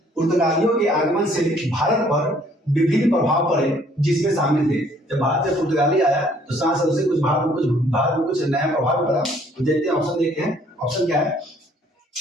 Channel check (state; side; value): normal; both; correlation 0.61